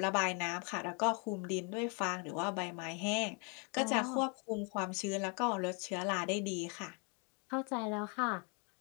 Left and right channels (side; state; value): right; quieter; 35.5 dB